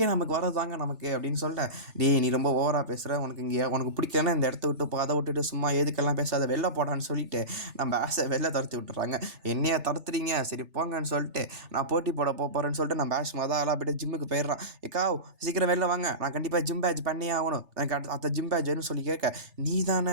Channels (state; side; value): late; left; 3.4 ms